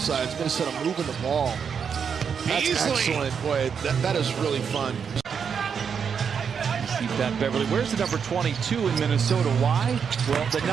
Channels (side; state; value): left; quieter; 6.8 dB